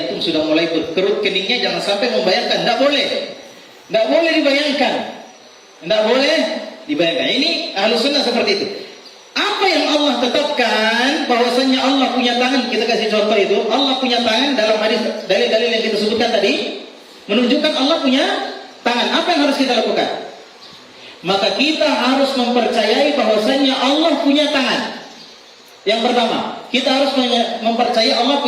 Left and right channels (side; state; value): both; identical; correlation 1.00